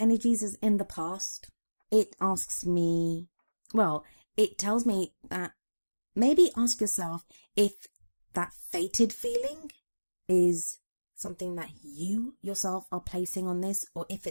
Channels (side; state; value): both; inverted; correlation -1.00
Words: is in the past, it asks me, it tells me that maybe ask yourself if that fated feeling is something that you yourself are placing on this, or if